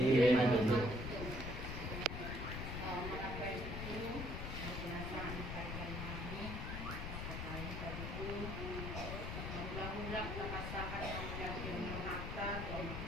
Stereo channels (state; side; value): noise; left; rumble, 4 dB below the sound